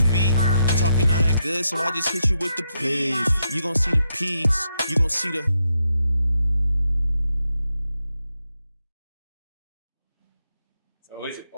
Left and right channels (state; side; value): inverted; both; correlation -0.82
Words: talking all that good, so I just hit you with the please. You gon' see the peace, you gon' see the. So